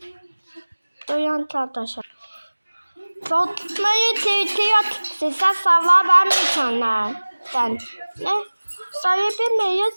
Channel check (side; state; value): both; inverted; correlation -1.00